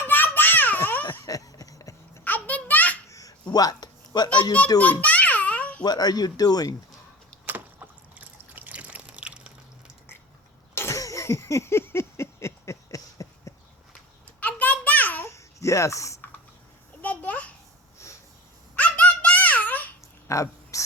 What? What are you doing? What are you doing? Yes. A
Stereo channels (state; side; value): normal; both; correlation 0.33